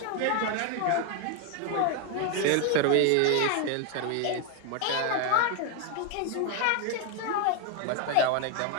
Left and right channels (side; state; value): both; different; correlation 0.01